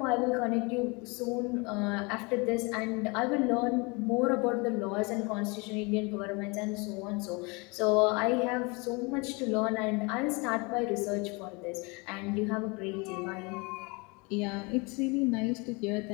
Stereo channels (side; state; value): right; quieter; 28.6 dB